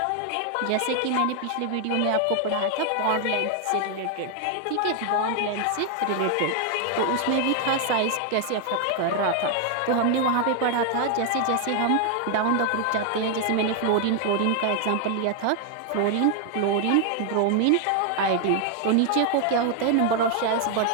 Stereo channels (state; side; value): different; both; correlation 0.00